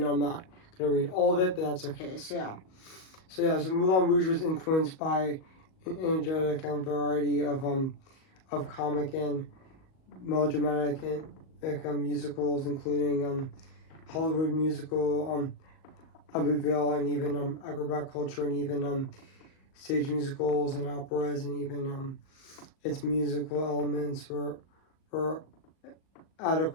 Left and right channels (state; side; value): late; right; 38 ms